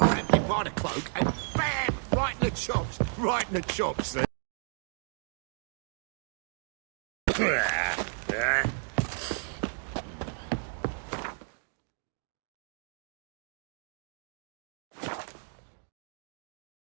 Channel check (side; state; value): left; silent; 56 dB below the other